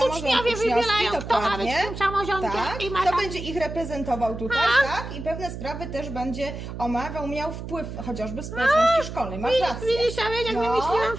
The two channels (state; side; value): noise; right; hum, 9 dB below the sound